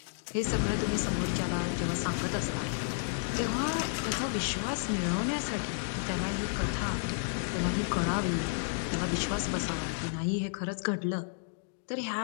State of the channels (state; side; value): silent; right; digital silence